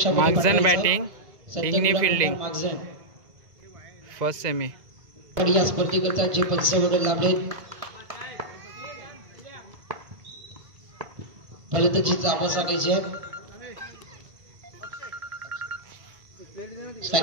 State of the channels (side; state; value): left; late; 2.0 ms